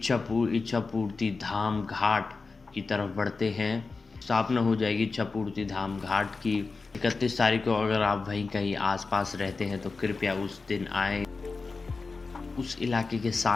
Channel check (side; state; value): right; quieter; 4.2 dB